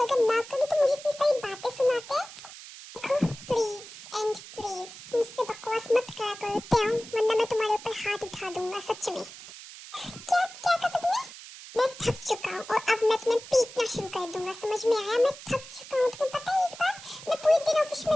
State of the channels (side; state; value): right; noise; hiss, 15 dB below the sound